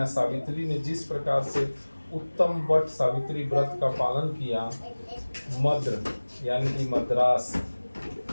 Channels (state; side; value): inverted; both; correlation -1.00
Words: सावित्री ने जिस प्रकार से उत्तम वट सावित्री व्रत का पालन किया, मद्र यानी कि मद्रास